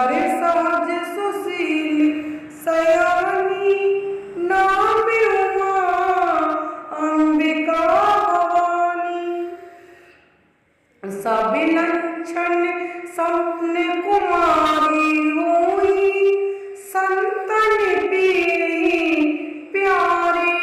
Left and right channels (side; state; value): both; identical; correlation 1.00